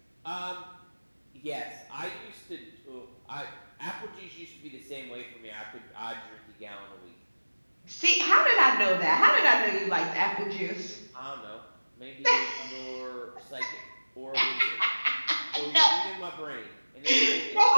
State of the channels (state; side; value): inverted; both; correlation -1.00